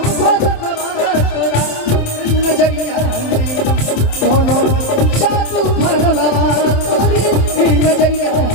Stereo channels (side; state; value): right; late; 27 ms